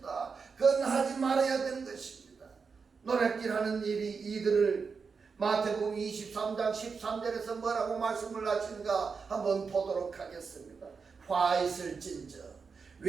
그건 하지 말아야 되는 것입니다. 노략질하는 일이 이들을 마태복음 23장 13절에서 뭐라고 말씀을 하시는가 한번 보도록 하겠습니다. 화 있을진저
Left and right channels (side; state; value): left; quieter; 5.3 dB